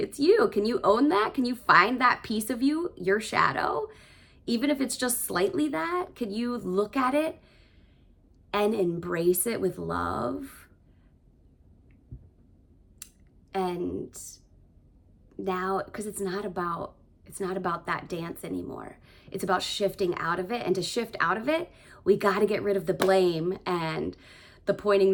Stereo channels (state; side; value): identical; both; correlation 1.00